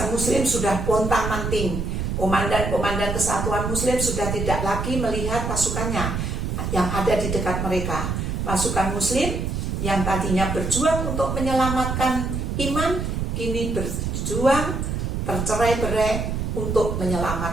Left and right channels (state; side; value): noise; right; rumble, 2 dB below the sound